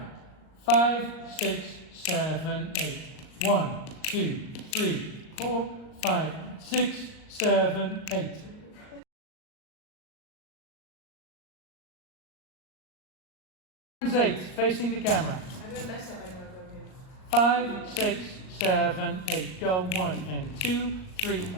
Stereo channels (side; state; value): right; late; 38 ms